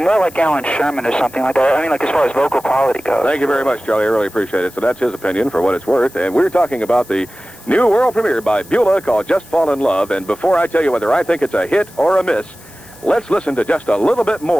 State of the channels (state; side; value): noise; left; hiss, 25 dB below the sound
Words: more like Alan Sherman or something like that. I mean, like, as far as vocal quality goes. Thank you very much, Charlie. I really appreciate it. So that's his opinion for what it's worth. And we're talking about the new world premiere by Beulah called Just Fall in Love. And before I tell you whether I think it's a hit or a miss, let's listen to just a little bit